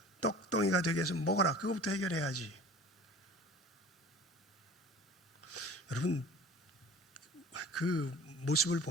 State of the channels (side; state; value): both; normal; correlation 0.42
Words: 떡덩이가 되게 해서 먹어라. 그것부터 해결해야지. 여러분, 그 모습을